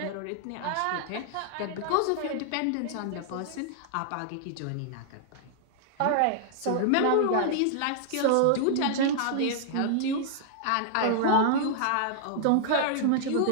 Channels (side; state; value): both; different; correlation -0.01